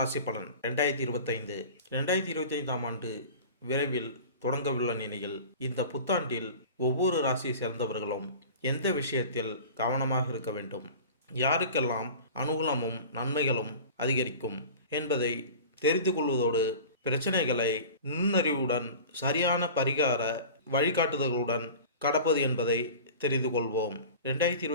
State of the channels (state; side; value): inverted; both; correlation -0.38